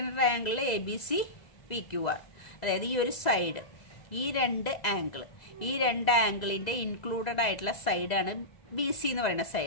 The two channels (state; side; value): late; right; 2.0 ms